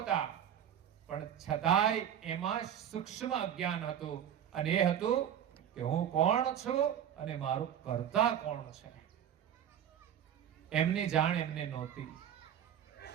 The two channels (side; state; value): left; quieter; 9.6 dB